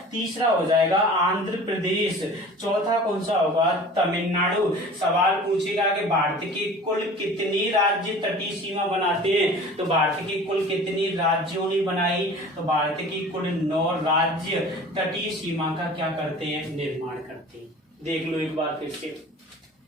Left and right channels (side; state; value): both; normal; correlation 0.42